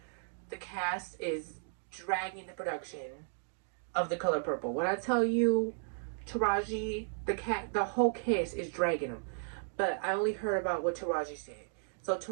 The cast is dragging the production of The Color Purple. When I tell you Taraji, the whole cast is dragging them. But I only heard about what Taraji said.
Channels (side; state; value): left; silent; digital silence